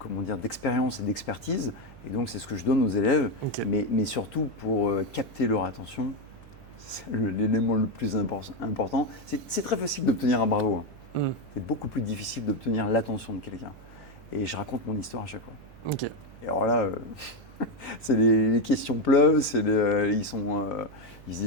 d'expérience et d'expertise. Et donc c'est ce que je donne aux élèves, mais surtout pour capter leur attention. C'est l'élément le plus important. C'est très facile d'obtenir un bravo. C'est beaucoup plus difficile d'obtenir l'attention de quelqu'un. Et je raconte mon histoire à chaque fois. Et alors là, c'est les questions pleuvent, ils se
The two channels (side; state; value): right; noise; hum, 20 dB below the sound